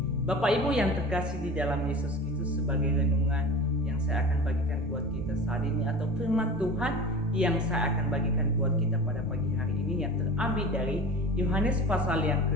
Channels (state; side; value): normal; both; correlation 0.34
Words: Bapak Ibu yang terkasih di dalam Yesus Kristus, sebagai renungan yang saya akan bagikan buat kita saat ini atau firman Tuhan yang saya akan bagikan buat kita pada pagi hari ini yang terambil dari Yohanes pasal yang